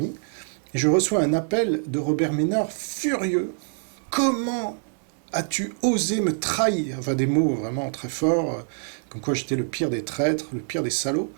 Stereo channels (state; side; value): silent; left; digital silence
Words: et je reçois un appel de Robert Ménard furieux. Comment as-tu osé me trahir? Enfin, des mots vraiment très forts, comme quoi j'étais le pire des traîtres, le pire des salauds.